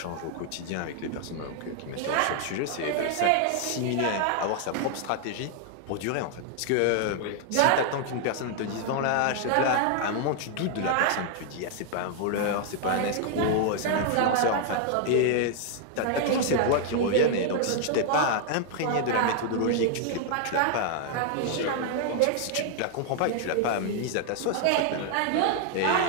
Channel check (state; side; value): different; both; correlation 0.00